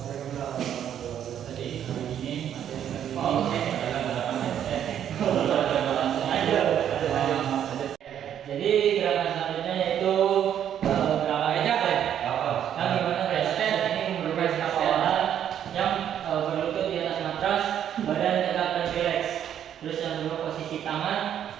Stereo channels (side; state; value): left; quieter; 9.8 dB